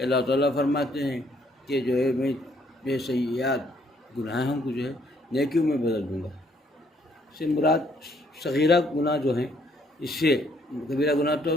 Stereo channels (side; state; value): both; normal; correlation 0.67